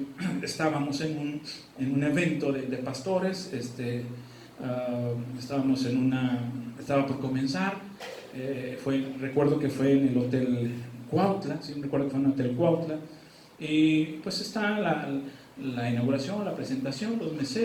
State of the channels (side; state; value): both; identical; correlation 1.00